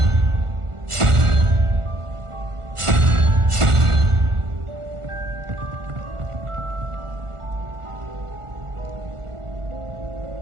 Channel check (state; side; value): late; left; 1.4 ms